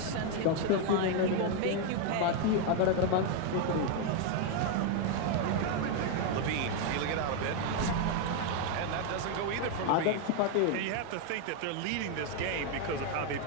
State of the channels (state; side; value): different; both; correlation 0.01